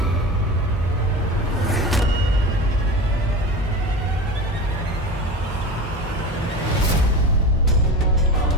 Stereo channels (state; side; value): normal; both; correlation 0.29